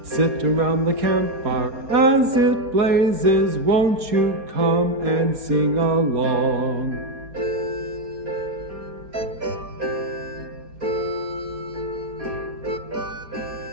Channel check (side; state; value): left; late; 4.3 ms